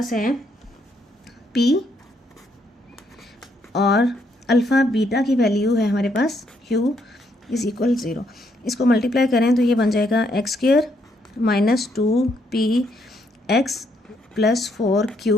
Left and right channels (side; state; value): both; normal; correlation 0.73